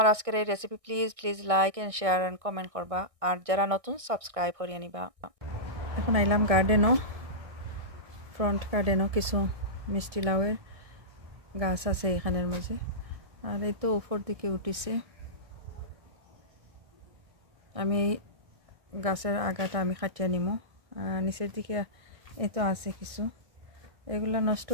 আজকের এই recipe please please like and share and comment করবা আর যারা নতুন সাবস্ক্রাইব করিয়ে নিবা এখন আইলাম গার্ডেনও ফ্রন্ট গার্ডেনও কিছু মিষ্টি লাউয়ের গাছ আছে এখানের মাঝে আর এই তো উপর দিকে উঠিছে আমি এই গাছের আগাটা আমি কাটিয়ে নিমো নিচের দিকে এই তো আছে কিছু এগুলা নষ্ট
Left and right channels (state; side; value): late; left; 1.6 ms